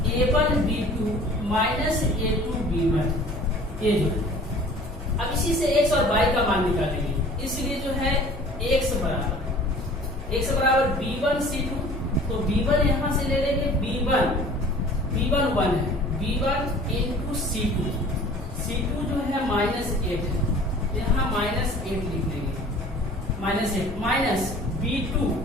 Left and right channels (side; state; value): both; normal; correlation 0.47